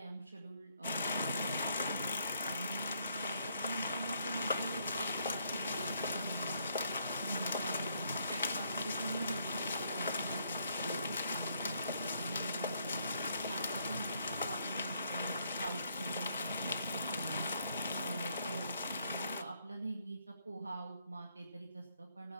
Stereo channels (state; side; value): inverted; both; correlation -0.72